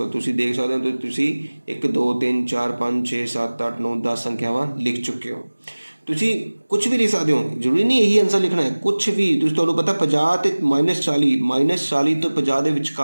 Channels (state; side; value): inverted; both; correlation -1.00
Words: ਤੁਸੀਂ ਦੇਖ ਸਕਦੇ ਹੋ, ਤੁਸੀਂ 1 2 3 4 5 6 7 8 9 10 ਸੰਖਿਆਵਾਂ ਲਿਖ ਚੁੱਕੇ ਹੋ। ਤੁਸੀਂ ਕੁਛ ਵੀ ਲਿਖ ਸਕਦੇ ਹੋ, ਜ਼ਰੂਰੀ ਨਹੀਂ ਇਹੀ ਆਨਸਰ ਲਿਖਣਾ ਹੈ, ਕੁਛ ਵੀ। ਤੁਸੀਂ ਤੁਹਾਨੂੰ ਪਤਾ 50 ਅਤੇ -40 ਤੋਂ 50 ਦੇ